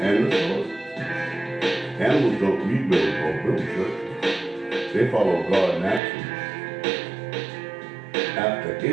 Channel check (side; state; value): left; drops out; at 6.0 s